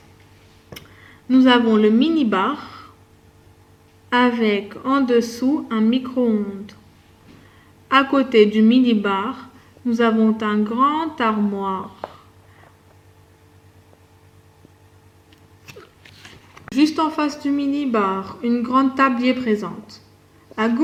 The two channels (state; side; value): identical; both; correlation 1.00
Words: nous avons le mini-bar avec en dessous un micro-ondes. À côté du mini-bar, nous avons un grand armoire. Juste en face du mini-bar, une grande table y est présente. À